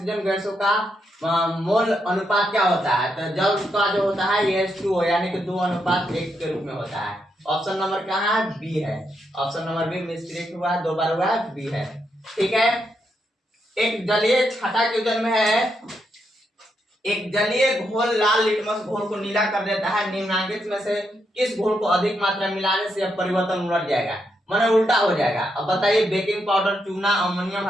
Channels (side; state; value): both; normal; correlation 0.81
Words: गैसों का मोल अनुपात क्या होता है? तो जल का जो होता है ये H2O, यानी कि 2:1 के रूप में होता है। ऑप्शन नंबर कहाँ है? बी है। ऑप्शन नंबर बी मिस्टेक हुआ है, 2 बार हुआ है, बी है। ठीक है। एक जलीय छठा क्वेश्चन में है, एक जलीय घोल लाल लिटमस घोल को नीला कर देता है, निम्नलिखित में से किस घोल को अधिक मात्रा में मिलाने से यह परिवर्तन उलट जाएगा, माने उल्टा हो जाएगा? अब बताइए, बेकिंग पाउडर, चूना, अमोनियम